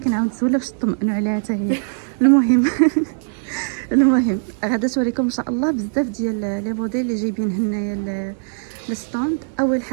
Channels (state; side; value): silent; left; digital silence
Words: نسولها باش تطمئنوا عليها حتى هي. المهم المهم غادا توريكم ان شاء الله بزاف ديال لي موديل اللي جايبين هنايا الستوند. اول